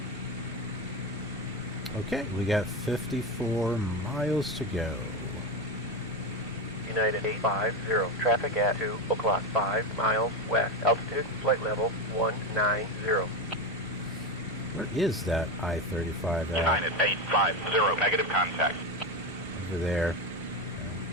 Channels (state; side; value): normal; both; correlation 0.16